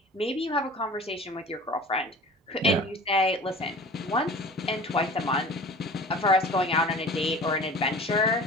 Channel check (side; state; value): both; normal; correlation 0.41